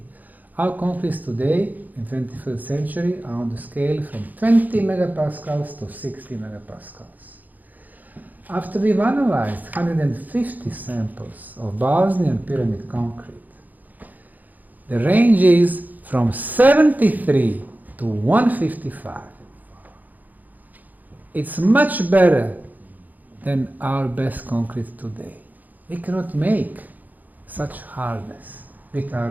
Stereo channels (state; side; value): late; left; 0.082 ms